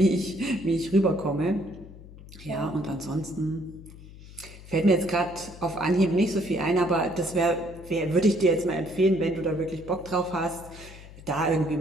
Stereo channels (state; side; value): noise; left; hum, 18 dB below the sound